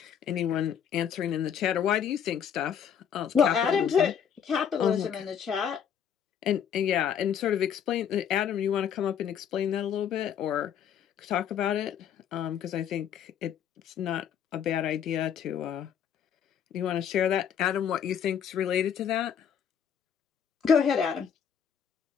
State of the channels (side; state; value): right; quieter; 8.3 dB